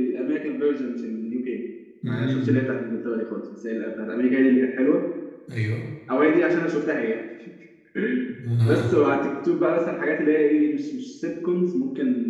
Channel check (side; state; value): both; identical; correlation 1.00